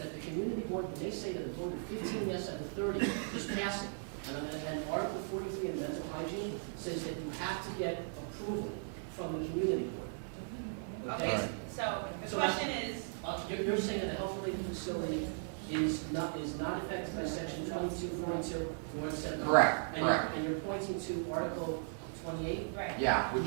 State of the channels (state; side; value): silent; left; 53 dB below the other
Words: the community board, when they say that the vote of 15 yes out of 30 is passing. And Article 43 in mental hygiene says that you have to get approval from the community board. Okay, Alright. so the So question is, You're saying that a health-related facility is not affected by section 2242, nor the 7. Correct, correct. And you're pointing to Article 28? right. Yeah,